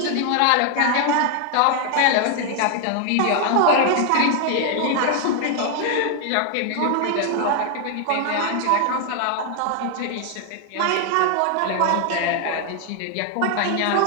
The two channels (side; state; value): both; different; correlation 0.00